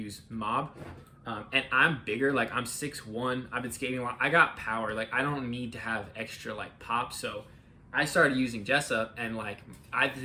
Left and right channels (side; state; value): both; identical; correlation 1.00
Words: Mob. And I'm bigger, like I'm 6'1", I've been skating a lot, I got power, like I don't need to have extra like pop, so I started using Jessup, and like I